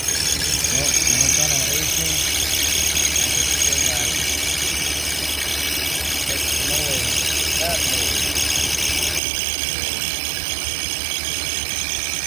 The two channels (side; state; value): left; drops out; at 9.2 s